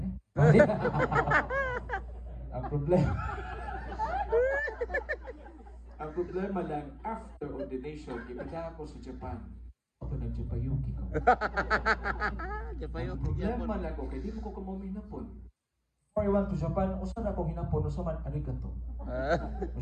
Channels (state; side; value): identical; both; correlation 1.00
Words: ang problema lang after ordination ipada ako sa Japan ako nag-Japayuki ko. Ang problema lang ko kay di mo ko hinapon. Before I went to Japan usa na akong hinapon usa man arigato.